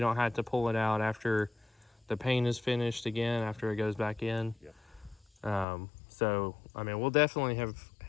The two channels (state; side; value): drops out; right; at 5.7 s